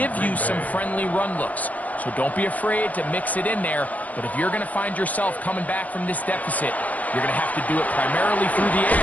you some friendly run looks. So don't be afraid to mix it in there. But if you're going to find yourself coming back from this deficit, you're going to have to do it primarily through the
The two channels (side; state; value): right; late; 0.073 ms